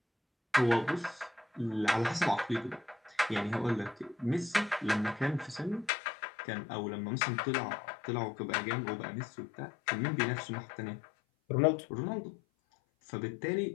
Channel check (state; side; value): drops out; right; at 5.9 s